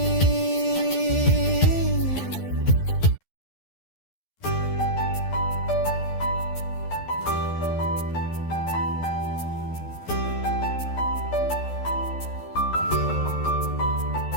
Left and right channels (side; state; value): right; late; 12 ms